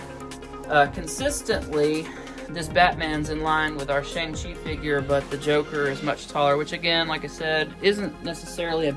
consistently, this Batman's in line with our Shang-Chi figure, but the Joker is much taller, which again, like I said, isn't necessarily a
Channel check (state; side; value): identical; both; correlation 1.00